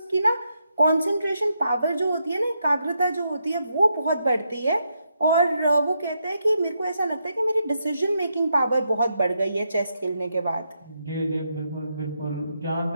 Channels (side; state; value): both; inverted; correlation -0.81